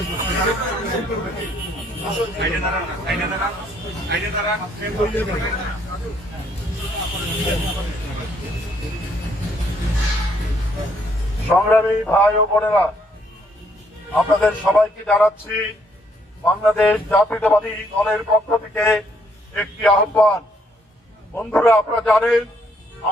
সংগ্রামী ভাই ও বোনেরা, আপনাদের সবাইকে জানাচ্ছি বাংলাদেশ জাতীয়তাবাদী দলের পক্ষ থেকে একটি আহ্বান। বন্ধুরা, আপনারা জানেন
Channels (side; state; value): both; normal; correlation 0.69